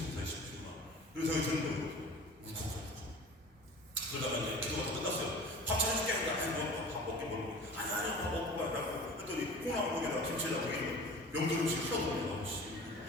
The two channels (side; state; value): both; normal; correlation 0.40